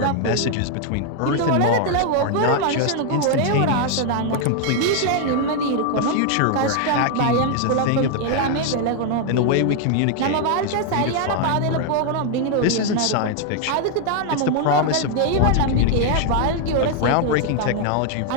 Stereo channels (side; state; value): both; different; correlation 0.00